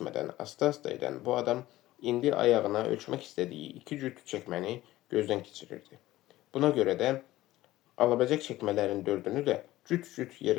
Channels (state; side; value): quieter; right; 16.2 dB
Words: asta-asta edən bu adam indi ayağına ölçmək istədiyi 2 cüt çəkməni gözdən keçirirdi. Buna görə də alabiləcək çəkmələrin 4-ünü də cüt-cüt